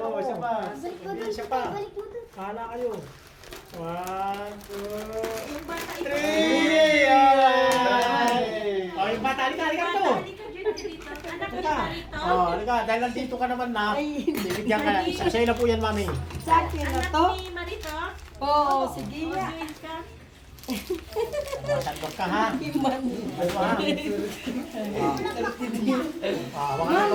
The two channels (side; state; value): both; identical; correlation 1.00